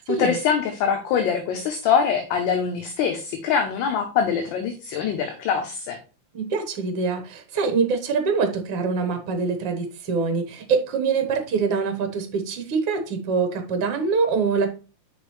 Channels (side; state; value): right; late; 5.8 ms